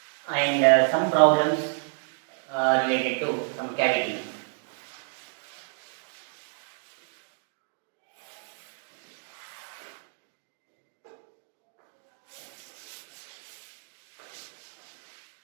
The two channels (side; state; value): left; silent; digital silence